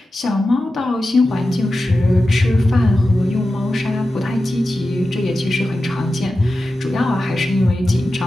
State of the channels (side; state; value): both; normal; correlation 0.93